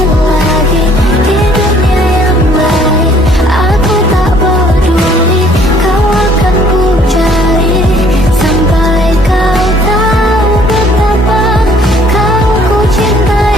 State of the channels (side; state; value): both; normal; correlation 0.60